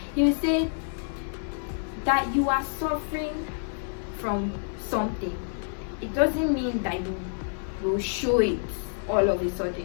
He would say that you are suffering from something. It doesn't mean that you will show it all of a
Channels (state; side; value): silent; right; digital silence